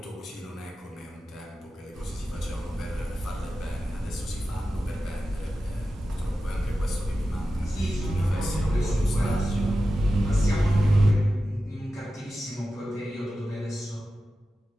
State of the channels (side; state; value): both; normal; correlation 0.93